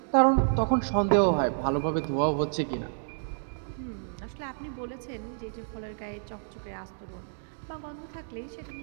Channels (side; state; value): left; silent; digital silence